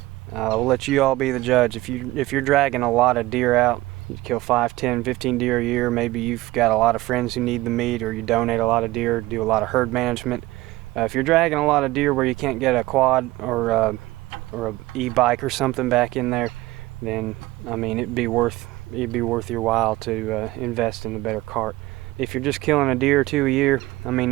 we'll let you all be the judge. If you're dragging a lot of deer out, you kill 5, 10, 15 deer a year. Maybe you've got a lot of friends who need the meat, or you donate a lot of deer, do a lot of herd management. If you're dragging a lot of deer where you can't get a quad or a e-bike or something back in there, then I mean it'd be worth your while to invest in a better cart. If you're just killing a deer or two a year, I mean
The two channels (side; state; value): left; quieter; 18.5 dB